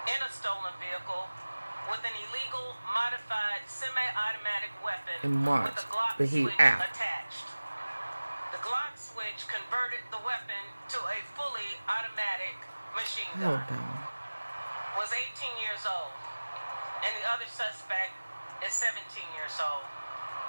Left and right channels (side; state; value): both; inverted; correlation -1.00